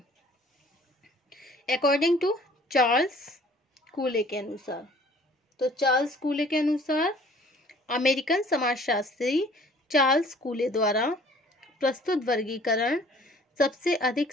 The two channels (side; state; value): both; normal; correlation 0.53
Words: अकॉर्डिंग टू चार्ल्स कूले के अनुसार, तो चार्ल्स कूले के अनुसार अमेरिकन समाजशास्त्री चार्ल्स कूले द्वारा प्रस्तुत वर्गीकरण सबसे अधिक